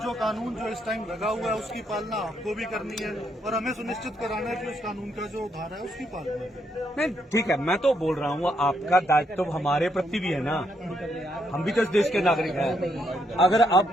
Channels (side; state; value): both; normal; correlation 0.76